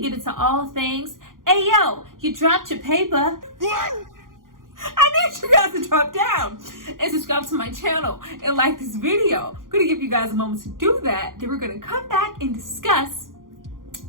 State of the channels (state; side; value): late; left; 0.90 ms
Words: get into all things, hey yo, you dropped your paper. I need you guys to drop down and subscribe to my channel and like this video. I'm gonna give you guys a moment to do that. Then we're gonna come back and discuss.